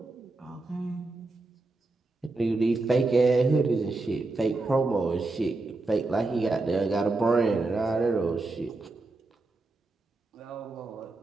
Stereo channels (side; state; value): left; quieter; 3.3 dB